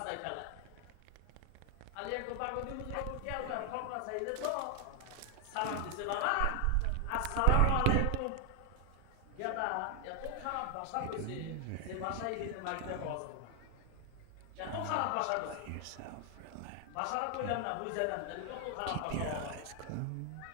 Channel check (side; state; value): both; different; correlation 0.00